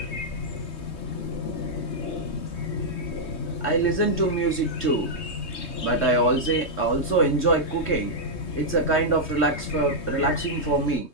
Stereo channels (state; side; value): late; right; 3.2 ms